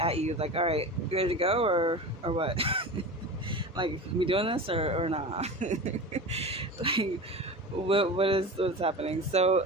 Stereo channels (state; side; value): normal; both; correlation 0.31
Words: at you, like, all right, you ready to go, or what? Like, we doing this, or not? Like, what's happening?